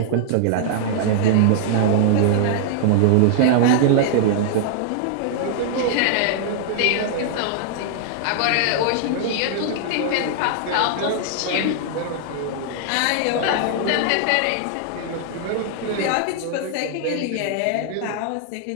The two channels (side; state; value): both; different; correlation -0.01